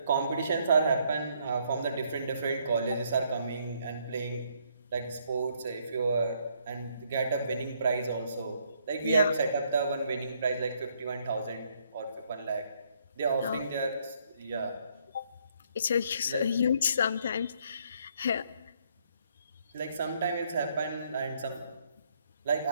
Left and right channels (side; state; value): both; inverted; correlation -0.69